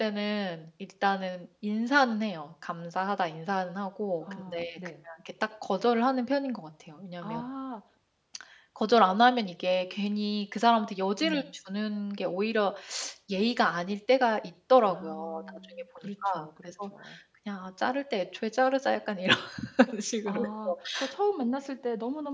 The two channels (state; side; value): identical; both; correlation 1.00